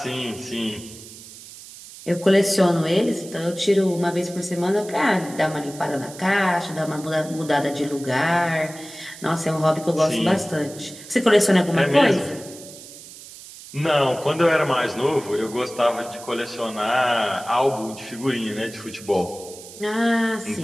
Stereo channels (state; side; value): noise; right; hiss, 16 dB below the sound